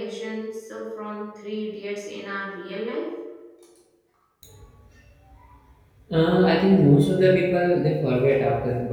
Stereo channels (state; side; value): identical; both; correlation 1.00